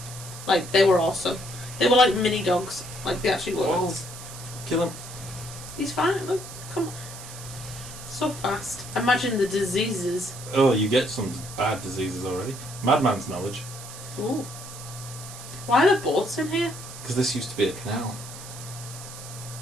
Like, they were awesome. They were like mini dogs. Like, they actually were. Oh. Kill him. He's fine. Look, come on. So fast. Imagine the diseases. Oh, you get some bad diseases already. Madman's knowledge. Ooh. Why are there boats in here? Because this used to be a canal.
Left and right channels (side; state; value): right; noise; hiss, 13 dB below the sound